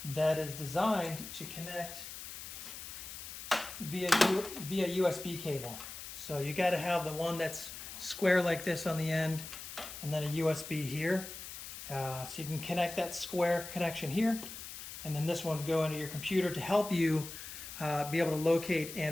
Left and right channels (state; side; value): noise; left; hiss, 10 dB below the sound